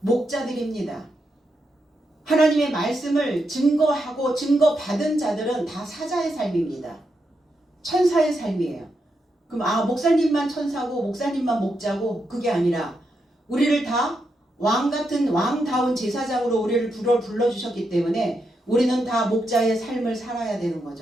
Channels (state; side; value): normal; both; correlation 0.83